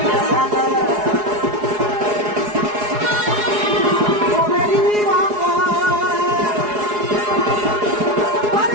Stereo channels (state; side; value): late; left; 4.8 ms